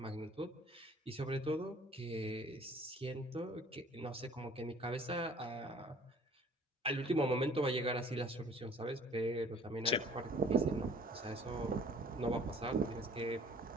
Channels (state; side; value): normal; both; correlation 0.52